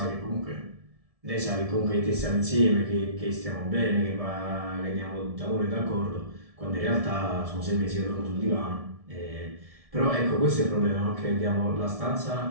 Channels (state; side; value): late; left; 1.7 ms